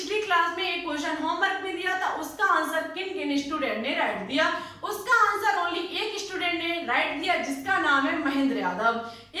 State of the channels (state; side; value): identical; both; correlation 1.00